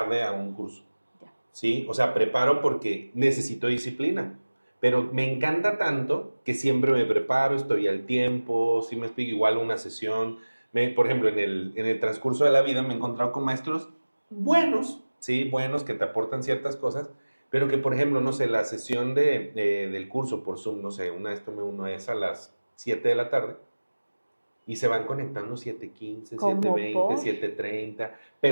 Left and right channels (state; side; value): inverted; both; correlation -1.00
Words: a un curso, ¿sí? O sea, preparo porque necesito disciplina, pero me encanta tanto que siempre me preparo, estoy al tiempo, si me explico, igual una sesión. Por ejemplo, en el transcurso de la vida me he encontrado con maestros buenos, ¿sí? Buenos, que te aportan ciertas cosas, pero que, por ejemplo, no sé, la sesión del curso por Zoom, no sé, una vez tomé uno es a las 7 de la tarde, y se van conectando 7:15, 7:20, 7:30.